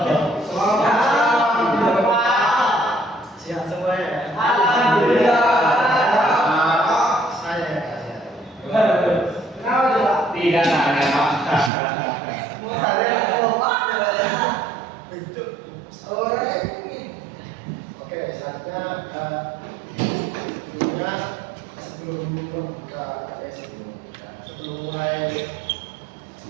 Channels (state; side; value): drops out; left; at 11.7 s